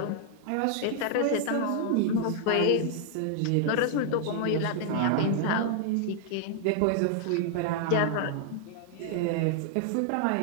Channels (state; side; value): different; both; correlation 0.00